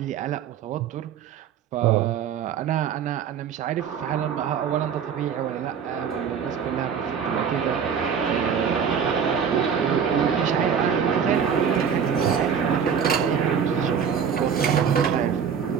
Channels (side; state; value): left; quieter; 7.3 dB